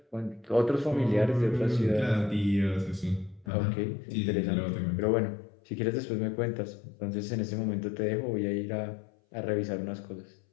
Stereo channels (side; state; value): right; drops out; at 3.5 s